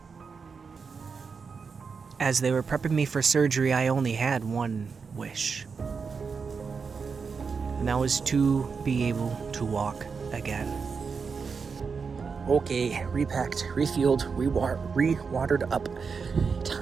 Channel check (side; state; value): left; quieter; 5.4 dB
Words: As they were prepping me for surgery, I only had one wish. And that was to be able to walk again. Okay, repacked, refueled, re-watered up.